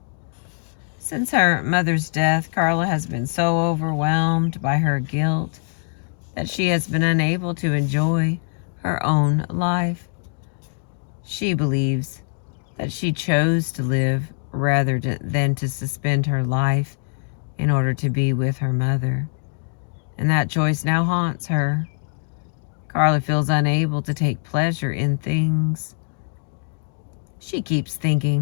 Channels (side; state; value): right; silent; digital silence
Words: Since her mother's death, Carla has been so overwhelmed by her guilt that she has been unable to enjoy her own life. She believes that she chose to live rather than to suspend her life in order to be with her mother, and that choice now haunts her. Carla feels unable to take pleasure in things. She keeps